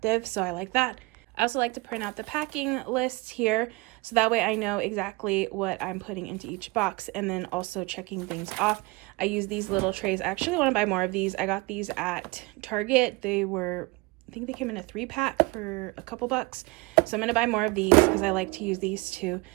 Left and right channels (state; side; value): quieter; left; 24.4 dB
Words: so I like that. I also like to print out the packing list here, so that way I know exactly what I'm putting into each box, and then also checking things off. I use these little trays. I actually want to buy more of these. I got these at Target. They were, I think they came in a 3-pack for a couple bucks. So I'm going to buy more of these because I like to use these to